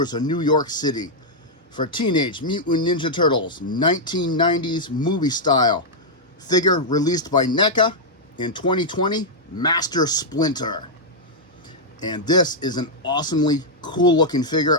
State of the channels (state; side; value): normal; both; correlation -0.05